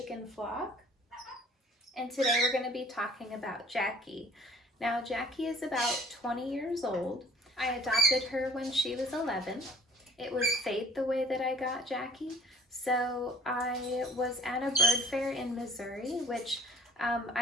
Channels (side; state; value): both; normal; correlation 0.51